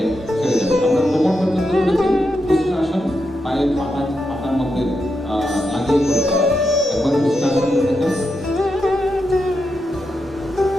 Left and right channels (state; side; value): normal; both; correlation 0.85